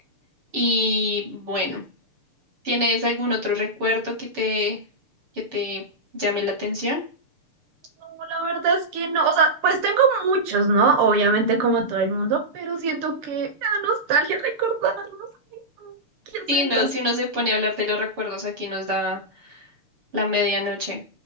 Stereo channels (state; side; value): late; left; 6.7 ms